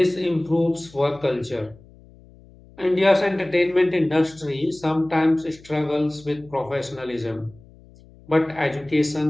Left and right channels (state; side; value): noise; left; hum, 24 dB below the sound